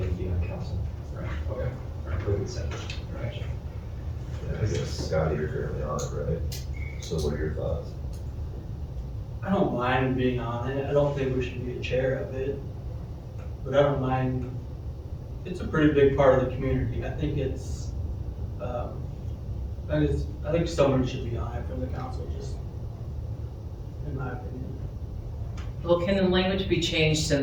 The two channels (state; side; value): identical; both; correlation 1.00